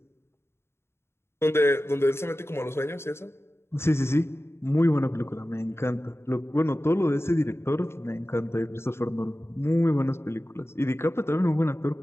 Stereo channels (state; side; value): late; right; 0.12 ms